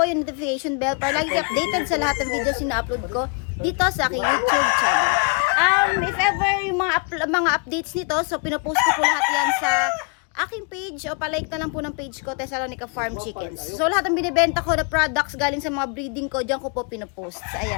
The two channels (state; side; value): quieter; right; 35.6 dB